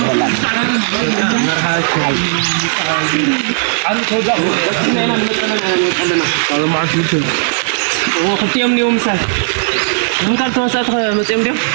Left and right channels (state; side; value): silent; left; digital silence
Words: عن كودا أنا هذا ما عندي شيء وقت يوم يوم سال من قال توسات مسيم ديم